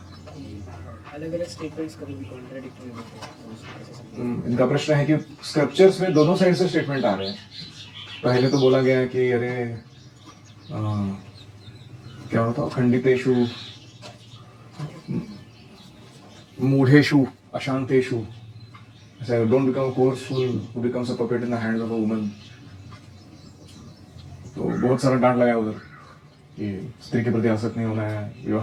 अलग अलग स्टेटमेंट्स कभी भी कॉन्ट्राडिक्टरी होते हैं। इनका प्रश्न है कि स्क्रिप्चर्स में दोनों साइड से स्टेटमेंट आ रहे हैं। पहले तो बोला गया है कि अरे क्या होता, खंडितेषु मूढ़ेषु अशांतेषु, डोंट बिकम कोर्सफुल who becomes a puppet in the hands of a woman. तो बहुत सारा डांट लगाया उधर कि स्त्री के प्रति आसक्त नहीं होना है,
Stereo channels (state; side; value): identical; both; correlation 1.00